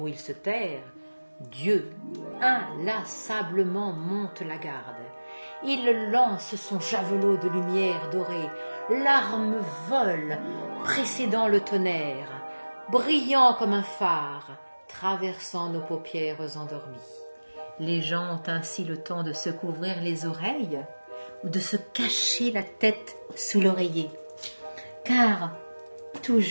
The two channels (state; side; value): inverted; both; correlation -1.00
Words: où il se terre, Dieu inlassablement monte la garde. Il lance son javelot de lumière dorée, l'arme vole, précédant le tonnerre, brillant comme un phare, traversant nos paupières endormies. Les gens ont ainsi le temps de se couvrir les oreilles ou de se cacher la tête sous l'oreiller, car